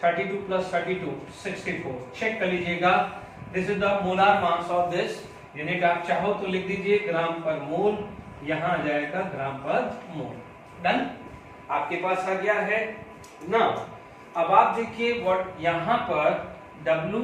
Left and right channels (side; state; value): both; identical; correlation 1.00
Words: 32 + 32 64, चेक कर लीजिएगा। This is the molar mass of this unit. आप चाहो तो लिख दीजिए ग्राम पर मोल, यहां आ जाएगा ग्राम पर मोल। डन, आपके पास आ गया है ना। अब आप देखिए व्हाट यहां पर